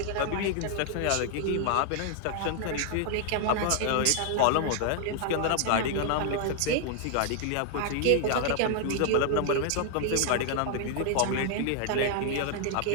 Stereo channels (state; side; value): different; both; correlation 0.00